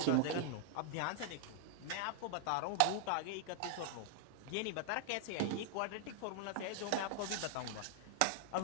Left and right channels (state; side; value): different; both; correlation 0.00